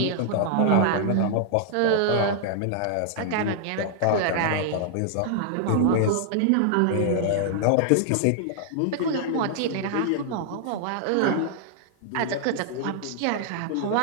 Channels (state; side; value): different; both; correlation -0.01